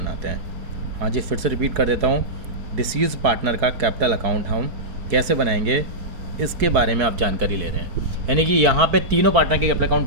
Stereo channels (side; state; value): left; late; 4.3 ms